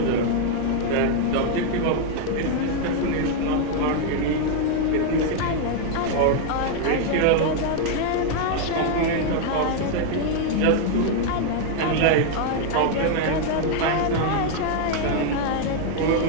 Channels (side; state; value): both; different; correlation 0.00